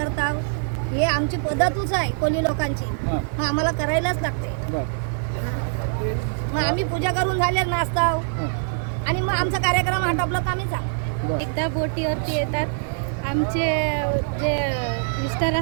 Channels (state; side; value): silent; left; digital silence